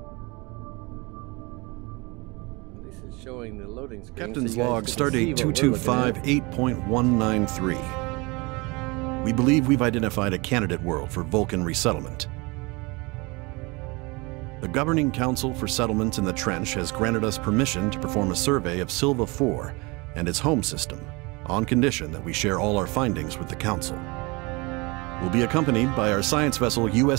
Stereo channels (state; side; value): quieter; left; 26.3 dB